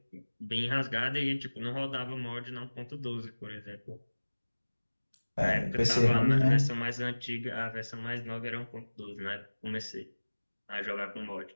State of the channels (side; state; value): both; inverted; correlation -1.00